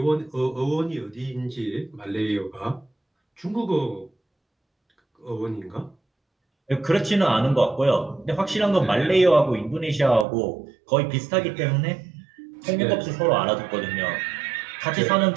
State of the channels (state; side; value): drops out; left; at 10.2 s